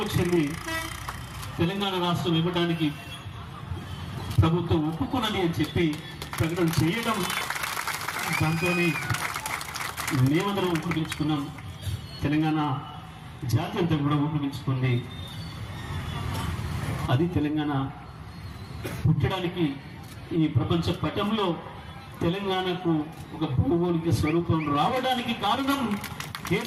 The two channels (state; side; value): identical; both; correlation 1.00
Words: తెలంగాణ రాష్ట్రం ఇవ్వడానికి ప్రభుత్వం ఒప్పుకున్నది అని చెప్పి ప్రకటన చేయడం, దాంతో మేమందరం ఉపయోగించుకున్నాం. తెలంగాణ జాతి అంతా కూడా ఉపయోగించుకుంది. అది తెలంగాణ పుట్టడానికి, ఈ ప్రపంచ పటంలో తెలంగాణకు ఒక భౌగోళిక స్వరూపం రావడానికి కారణం